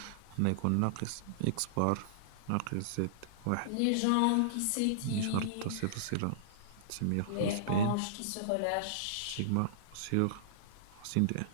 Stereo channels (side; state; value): both; different; correlation -0.02